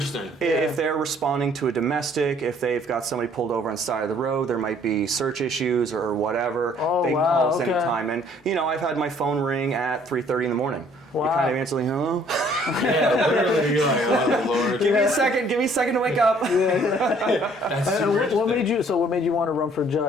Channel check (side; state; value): both; normal; correlation 0.59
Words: they're responding to a domestic, if they've got somebody pulled over on the side of the road, there might be search issues or whatever. They can call us anytime. And I've had my phone ring at 3:30 in the morning. Wow. You kind of answer like, hello? Yeah, literally, you're like, oh Lord. Give me a second to wake up. That's And super what interesting. made you? So what made you want to run for